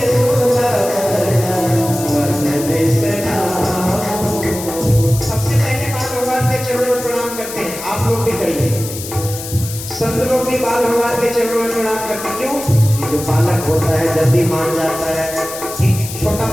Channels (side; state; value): left; noise; hiss, 10 dB below the sound